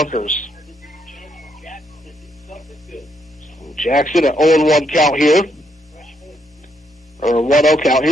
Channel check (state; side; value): normal; both; correlation 0.75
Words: Jackson at 0-1 count here. Or 1-0 count.